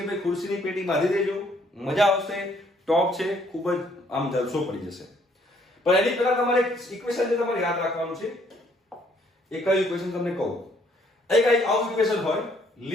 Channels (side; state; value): both; normal; correlation 0.65